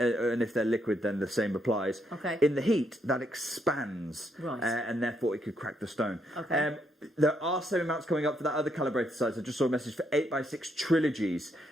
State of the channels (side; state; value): both; normal; correlation 0.76